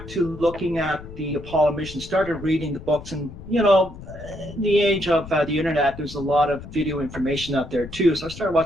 to looking at the Apollo mission, started reading the books. And, in the age of the internet, there's a lot of video information out there too. So I started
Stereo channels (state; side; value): noise; left; rumble, 14 dB below the sound